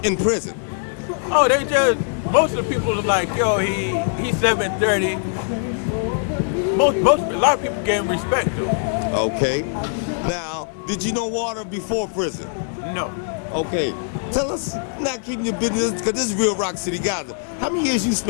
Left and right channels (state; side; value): silent; right; digital silence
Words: in prison? Oh, they just, most of the people are like, yo, he's 730. A lot of people gave him respect though. Okay. Now, did you know Walter before prison? No. Okay. Tell us, not keeping your business, because this is real Rock City Gaza. How many years you